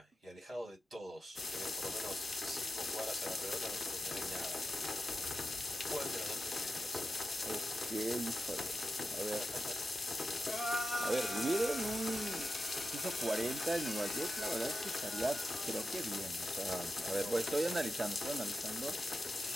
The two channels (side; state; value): both; normal; correlation 0.90